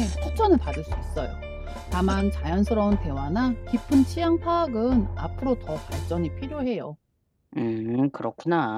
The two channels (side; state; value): both; identical; correlation 1.00